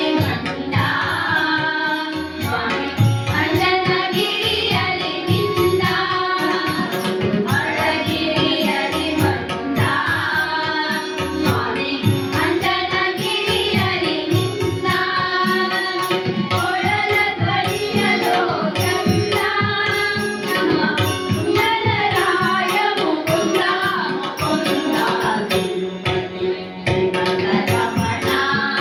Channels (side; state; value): both; identical; correlation 1.00